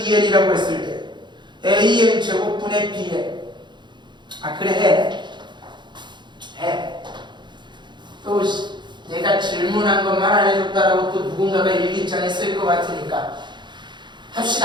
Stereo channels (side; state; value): left; late; 0.22 ms